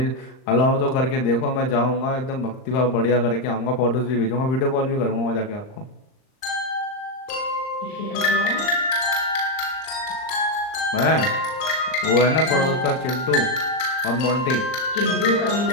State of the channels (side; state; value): right; late; 39 ms